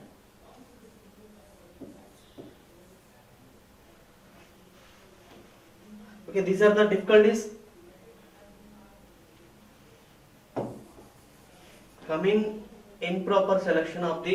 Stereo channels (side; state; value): both; identical; correlation 1.00